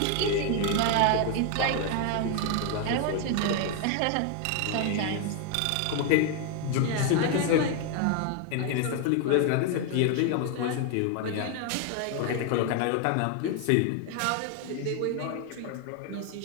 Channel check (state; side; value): different; both; correlation 0.01